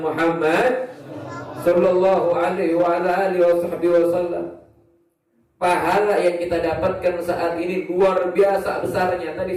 Muhammad sallallahu alaihi wa ala alihi wasallam. Pahala yang kita dapatkan saat ini luar biasa besarnya. Tadi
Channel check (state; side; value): identical; both; correlation 1.00